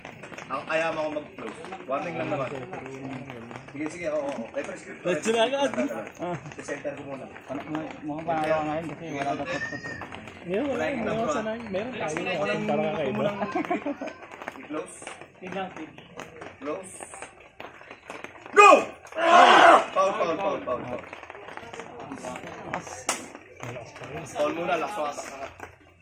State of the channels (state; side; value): identical; both; correlation 1.00